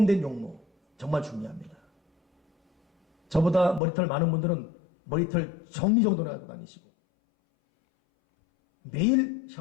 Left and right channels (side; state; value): right; drops out; at 3.8 s